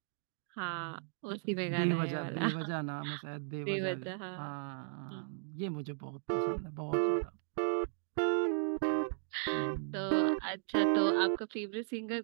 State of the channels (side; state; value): left; silent; digital silence